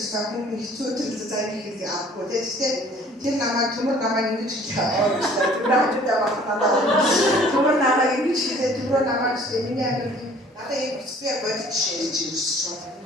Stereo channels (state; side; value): normal; both; correlation 0.53